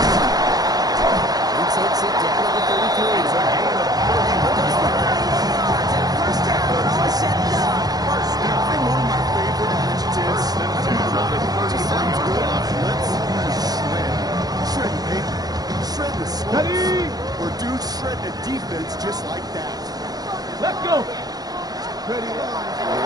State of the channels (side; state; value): left; late; 0.19 ms